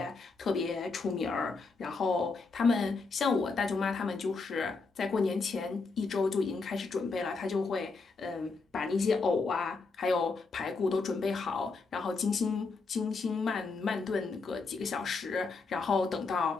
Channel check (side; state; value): right; quieter; 4.2 dB